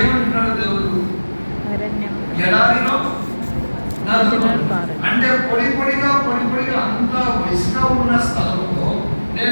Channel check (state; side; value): inverted; both; correlation -1.00